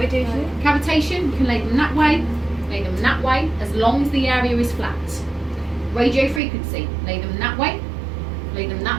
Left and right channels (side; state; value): left; drops out; at 6.4 s